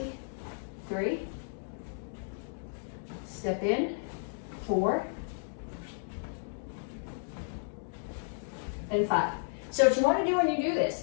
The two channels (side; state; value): right; silent; digital silence